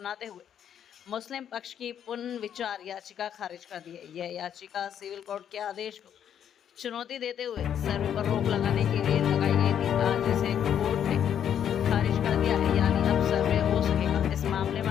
हुए मुस्लिम पक्ष की पुनर्विचार याचिका खारिज कर दी है। यह याचिका सिविल कोर्ट के आदेश को चुनौती देते हुए सर्वे पर रोक लगाने के लिए लगाई गई थी। आज इसे कोर्ट ने खारिज कर दिया है, यानी अब सर्वे हो सकेगा। इस मामले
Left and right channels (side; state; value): right; quieter; 9.2 dB